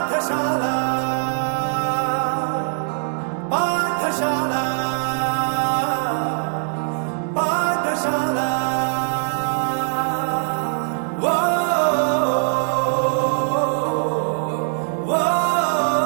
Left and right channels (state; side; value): silent; left; digital silence